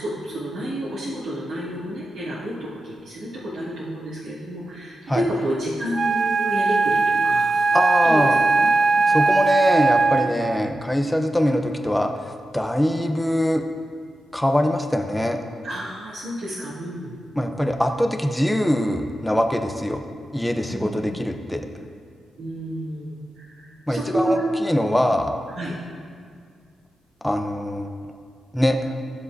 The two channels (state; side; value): normal; both; correlation 0.92